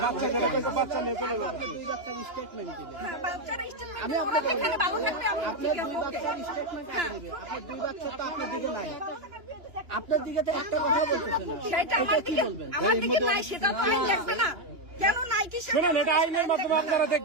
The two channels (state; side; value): late; left; 2.9 ms